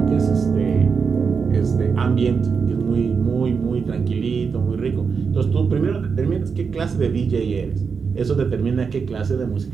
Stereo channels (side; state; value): left; quieter; 5.6 dB